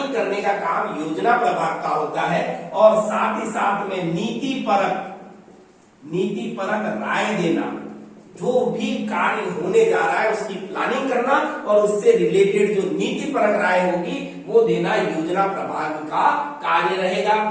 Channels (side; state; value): both; identical; correlation 1.00